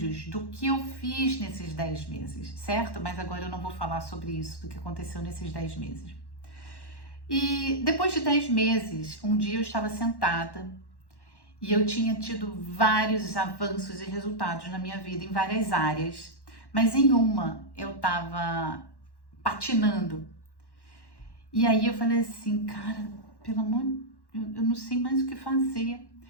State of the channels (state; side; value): late; right; 1.1 ms